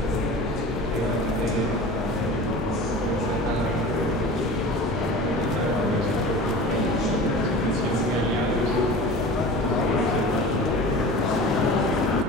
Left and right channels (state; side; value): normal; both; correlation 0.36